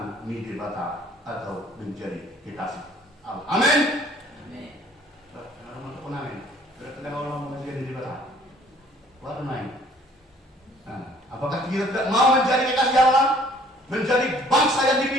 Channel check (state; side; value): normal; both; correlation 0.57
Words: Nidebata atau menjadi kekasih Allah. Amin. Amin. Amin. Berarti orang menjadi Nidebata. What am apakah kita tidak mau menjadi kekasih Allah, menjadi bangsa yang